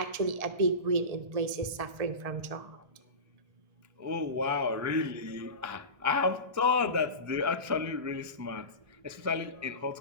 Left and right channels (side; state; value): left; late; 1.7 ms